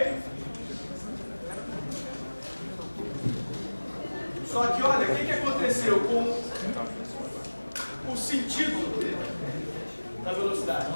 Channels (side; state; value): both; inverted; correlation -1.00